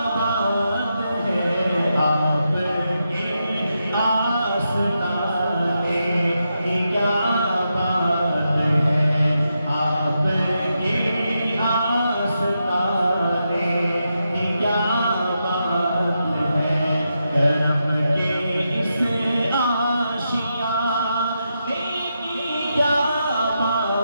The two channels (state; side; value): inverted; both; correlation -0.85